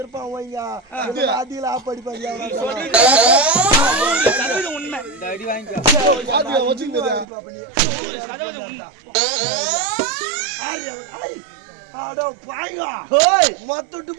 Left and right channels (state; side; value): drops out; left; at 7.2 s